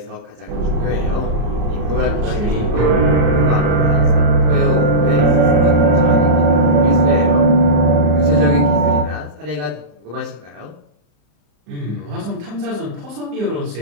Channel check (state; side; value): late; left; 34 ms